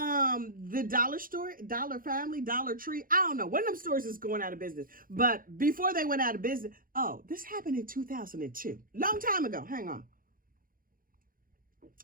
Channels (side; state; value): left; late; 0.41 ms